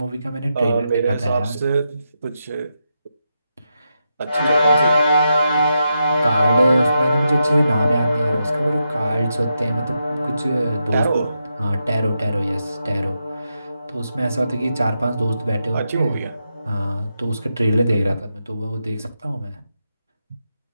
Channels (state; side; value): inverted; both; correlation -0.85